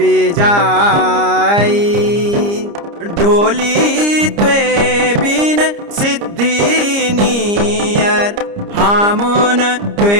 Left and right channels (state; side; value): late; left; 30 ms